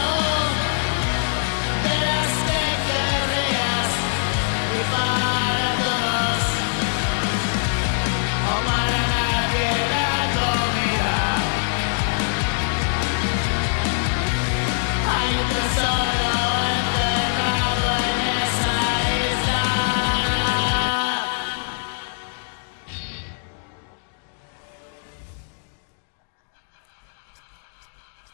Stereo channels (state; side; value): silent; right; digital silence